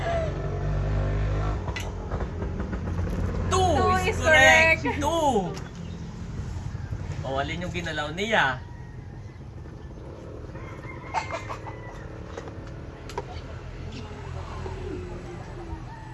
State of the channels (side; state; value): both; identical; correlation 1.00